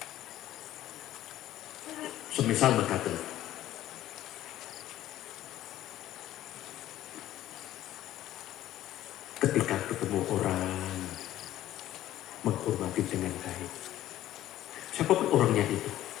Semisal mekaten. Ketika ketemu orang menghormati dengan baik, siapapun orangnya itu,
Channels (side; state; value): right; quieter; 13.6 dB